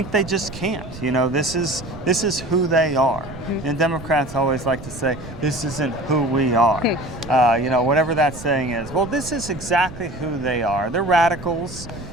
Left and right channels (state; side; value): noise; right; rumble, 14 dB below the sound